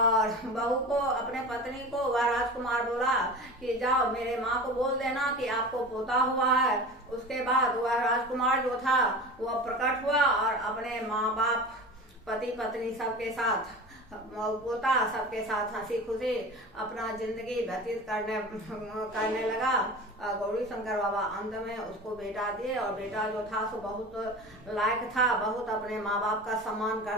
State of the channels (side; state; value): both; normal; correlation 0.33